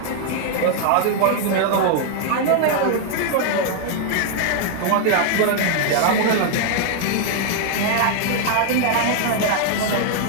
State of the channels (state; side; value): different; both; correlation 0.00